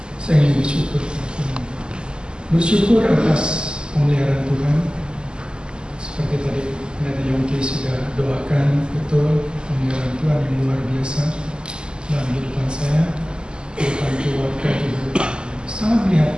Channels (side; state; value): left; late; 0.048 ms